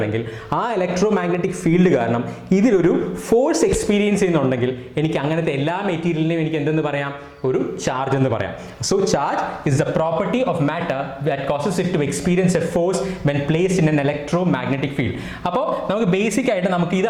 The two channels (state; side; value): identical; both; correlation 1.00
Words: ആ ഇലക്ട്രോ മാഗ്നറ്റിക് ഫീൽഡ് കാരണം ഇതിലൊരു ഫോഴ്സ് എക്സ്പീരിയൻസ് ചെയ്യുന്നുണ്ടെങ്കിൽ എനിക്ക് അങ്ങനത്തെ എല്ലാ മെറ്റീരിയലിനെയും എനിക്ക് എന്തെന്ന് പറയാം, ഒരു ചാർജ് എന്ന് പറയാം. So charge is the property of matter that causes it to experience a force when placed in an electromagnetic field. അപ്പോൾ നമുക്ക് ബേസിക് ആയിട്ട് നമുക്ക്